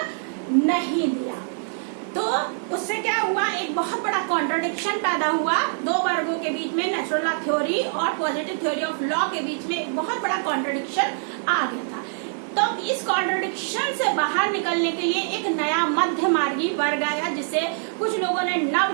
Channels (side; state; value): left; silent; digital silence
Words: नहीं दिया। तो उससे क्या हुआ, एक बहुत बड़ा कॉन्ट्रडिक्शन पैदा हुआ दो वर्गों के बीच में, नेचुरल लॉ थ्योरी और पॉजिटिव थ्योरी ऑफ लॉ के बीच में एक बहुत बड़ा कॉन्ट्रडिक्शन आ गया था। तो इस कॉन्ट्रडिक्शन से बाहर निकलने के लिए एक नया मध्य मार्गी वर्ग आया, जिसे कुछ लोगों ने